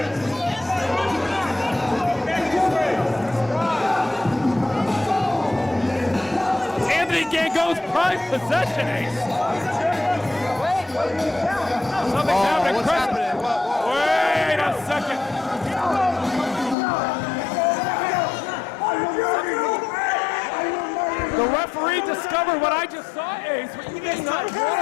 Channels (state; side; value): drops out; right; at 16.8 s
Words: It's Anthony Gangone's prized possession, Ace. Something's happening. What's Chris- happening? Whoa. Wait a second. The referee discovered what I just saw, Ace, what you may not